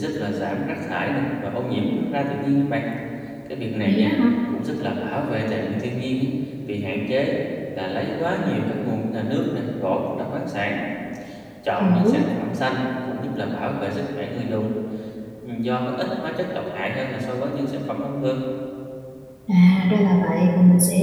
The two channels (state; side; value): identical; both; correlation 1.00